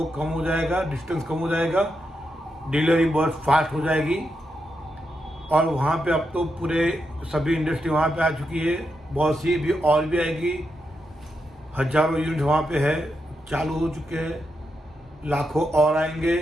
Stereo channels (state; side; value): normal; both; correlation 0.84